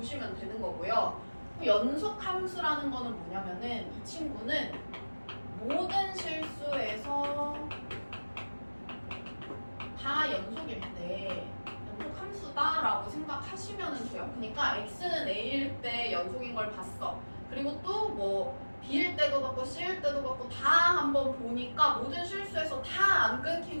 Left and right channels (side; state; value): both; inverted; correlation -1.00